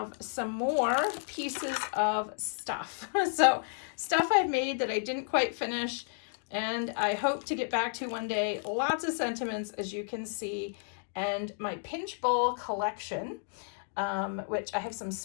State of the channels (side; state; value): right; silent; digital silence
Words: some more pieces of stuff. So stuff I've made that I didn't quite finish and I hope to get back to one day. Lots of sentiments, as you can see, and my pinch bowl collection, which I have some